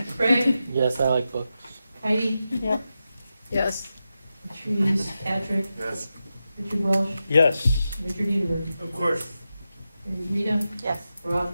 Craig? Yes, I like books. Heidi? Yep. Yes. Patrice, Patrick, Yes. Richard Welsh, Yes. Richard Edenberg, Of course. Rita, Yes.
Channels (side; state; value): both; inverted; correlation -0.90